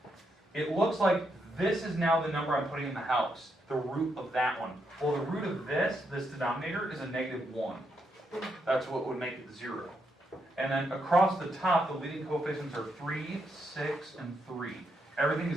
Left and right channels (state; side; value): normal; both; correlation 0.80